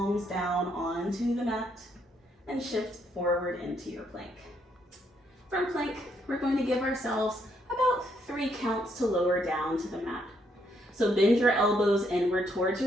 down onto the mat and shift forward into your plank. From plank, we're going to give ourselves about 3 counts to lower down to the mat. So bend your elbows inward towards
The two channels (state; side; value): normal; both; correlation 0.73